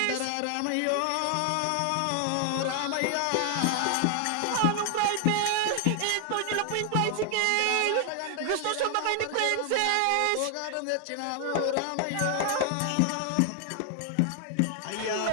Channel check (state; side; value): different; both; correlation 0.00